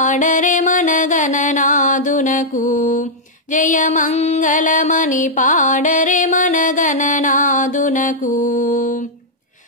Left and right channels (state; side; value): normal; both; correlation -0.06